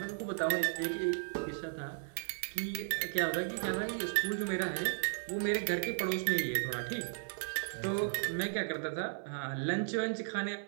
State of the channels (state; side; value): silent; left; 54 dB below the other